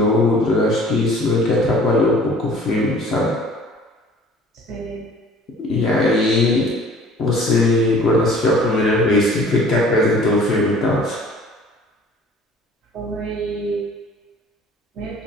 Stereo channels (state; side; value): normal; both; correlation 0.50